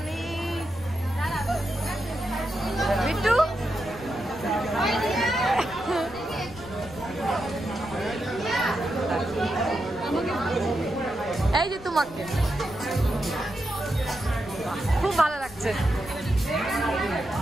বিট্টু, এই যে তোমাকে খুব ভালো লাগছে।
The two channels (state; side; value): noise; left; rumble, 18 dB below the sound